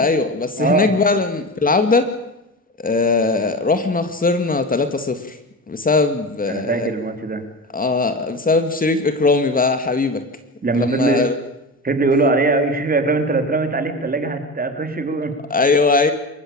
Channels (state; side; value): normal; both; correlation 0.26